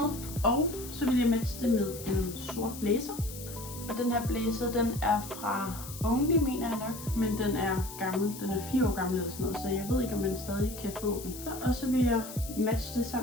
Og så vil jeg matche det med en sort blazer. Og den her blazer, den er fra Only, mener jeg nok. Men den er gammel. Den er 4 år gammel eller sådan noget. Så jeg ved ikke, om man stadig kan få den. Og så vil jeg matche det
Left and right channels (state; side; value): noise; left; hiss, 12 dB below the sound